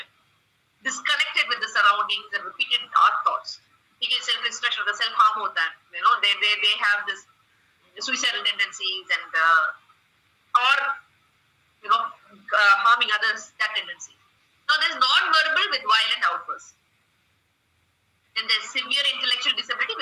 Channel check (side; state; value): both; identical; correlation 1.00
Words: Disconnected with the surroundings and repeated dark thoughts. He gets self-destruction, the self-harm hota hai. They have this suicidal tendencies and harming others, that tendency. Now there's non-verbal with violent outbursts. Then there's severe intellectual disability